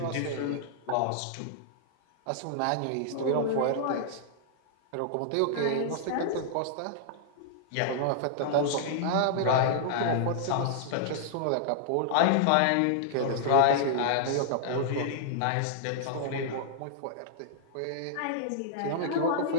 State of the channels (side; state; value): both; different; correlation -0.01